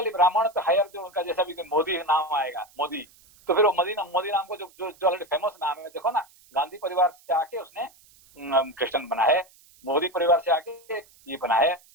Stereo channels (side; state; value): right; noise; hiss, 28 dB below the sound